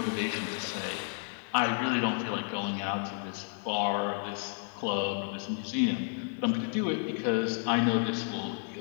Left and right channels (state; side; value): silent; right; 57 dB below the other